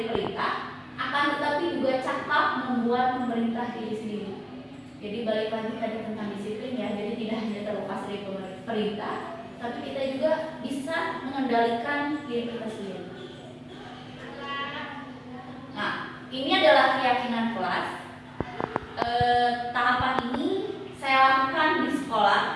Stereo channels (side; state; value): both; identical; correlation 1.00